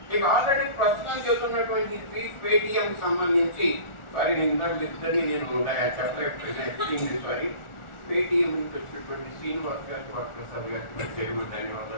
ఇక ఆల్రెడీ ప్రస్తుతం చెబుతున్నటువంటి పేటిఎం సంబంధించి సారీ నేను ఇద్దరిని నేను చెప్పలేదు, సారీ పేటిఎం నుంచి వచ్చినటువంటి శ్రీనివాస్ గారికి వరప్రసాద్ గారికి ప్రత్యేకమైన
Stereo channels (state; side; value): late; right; 1.4 ms